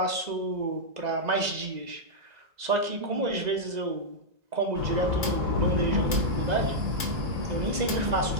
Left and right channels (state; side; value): late; left; 2.0 ms